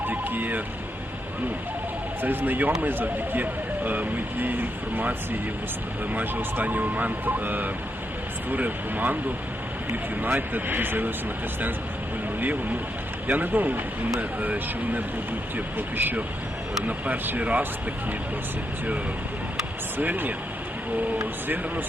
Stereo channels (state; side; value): normal; both; correlation 0.81